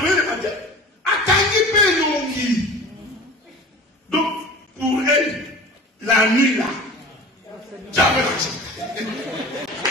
le matin. Donc, pour elle, la nuit là, tu as l'argent.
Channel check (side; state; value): both; normal; correlation 0.39